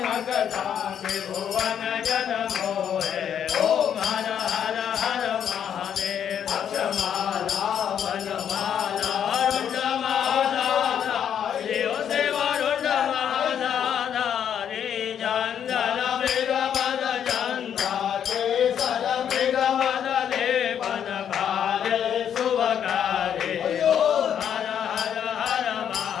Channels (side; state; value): right; quieter; 8.9 dB